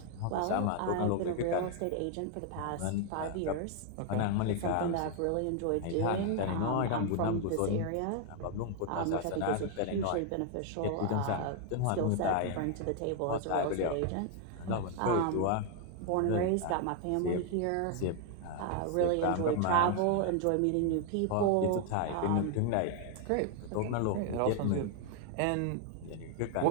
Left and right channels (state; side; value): different; both; correlation 0.00